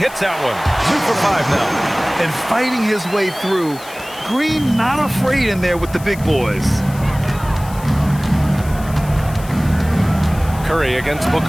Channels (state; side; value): noise; left; hiss, 18 dB below the sound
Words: that one. 2 for 5 now. And fighting his way through. Green not afraid in there with the big boys. Curry against